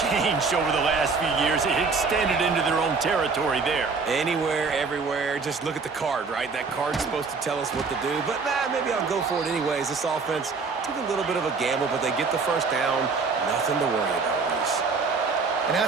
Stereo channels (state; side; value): quieter; left; 4.6 dB